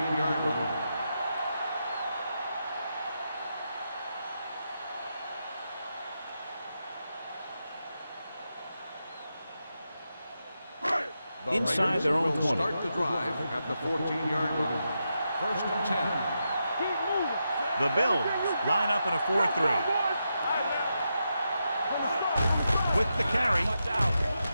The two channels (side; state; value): both; inverted; correlation -0.86